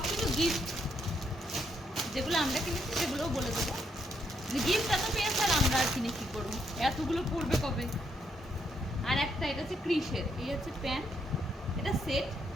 কিছু গিফট, যেগুলো আমরা কিনেছি সেগুলোও বলে দেবো। গিফট এত পেয়েছে আর আমরা আর কিনে কী করবো, এতগুলো পড়বে কবে। আর একটা এটা হচ্ছে ক্রিসের, এই হচ্ছে প্যান্ট, এটা সেট।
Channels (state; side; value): normal; both; correlation 0.76